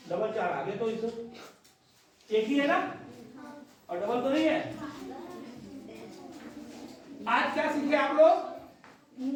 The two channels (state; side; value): identical; both; correlation 1.00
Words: डबल 4 आ गया। तो इस एक ही है ना, और डबल तो नहीं है। आज क्या सीखे आप लोग?